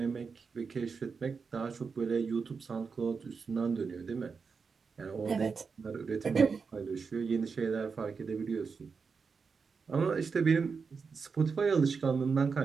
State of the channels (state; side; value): quieter; left; 5.3 dB